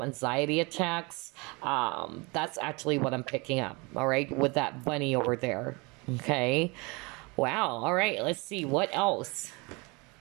anxiety attacks. That's actually what I'm picking up, all right, with that bunny over there. Okay, wow. All right, let's see what else.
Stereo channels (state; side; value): quieter; left; 27.9 dB